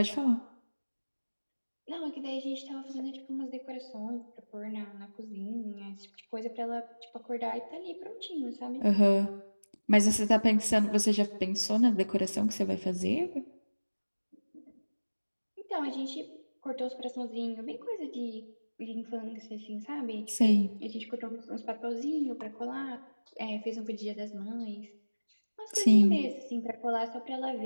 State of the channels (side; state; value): both; inverted; correlation -1.00